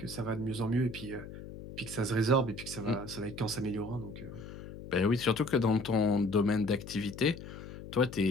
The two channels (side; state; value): left; noise; hum, 12 dB below the sound